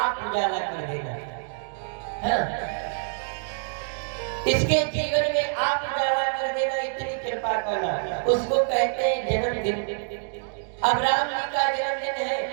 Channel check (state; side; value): silent; left; digital silence